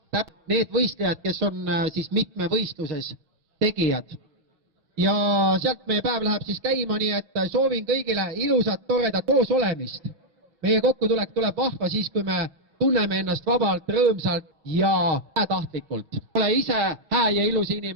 need võistlejad, kes on siis mitmevõistluses tegijad. Ja sealt meie päev läheb siis käima, nii et soovin kõigile ilusat, toredat koos olemist. Meie kokkutulek tuleb vahva siis, kui me tunneme ennast vabalt, rõõmsalt ja tahtlikult. Ole ise hää ja ilus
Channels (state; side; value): late; left; 5.9 ms